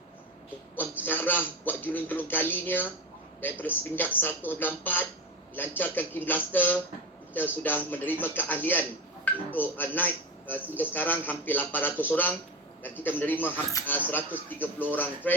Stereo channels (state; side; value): normal; both; correlation 0.21